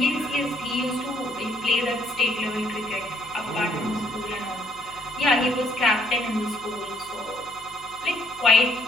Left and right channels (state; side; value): noise; left; hum, 24 dB below the sound